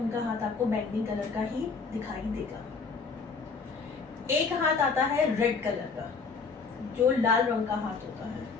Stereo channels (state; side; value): quieter; right; 4.8 dB